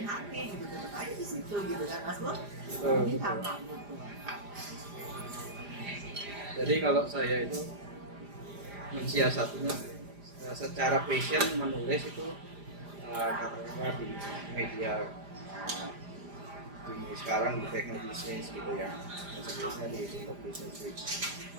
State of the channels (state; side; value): late; left; 5.0 ms